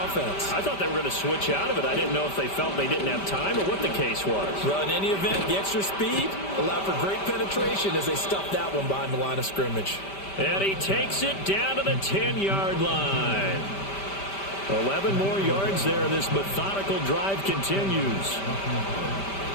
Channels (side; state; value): right; late; 5.1 ms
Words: offense. I thought they were going to switch out of it. I didn't know if they felt they didn't have time or what the case was. Well, in any event, the extra speed allowed for great penetration as they stuffed that one behind the line of scrimmage. And he takes it down to the 10-yard line. 11 more yards there. This methodical drive continues.